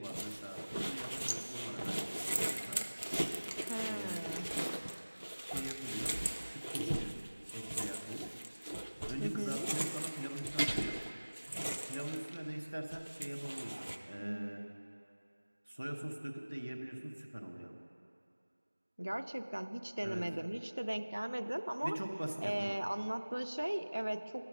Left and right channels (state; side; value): inverted; both; correlation -1.00